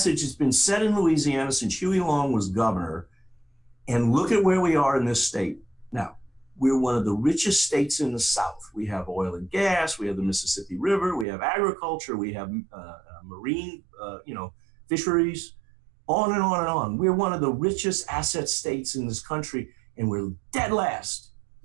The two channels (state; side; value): drops out; left; at 11.2 s